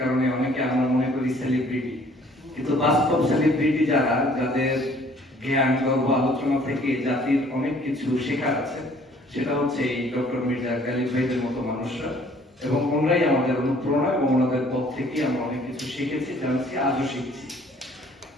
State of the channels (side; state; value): both; normal; correlation 0.57